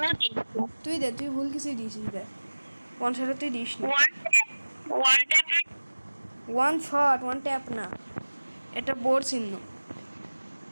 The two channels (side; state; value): both; inverted; correlation -1.00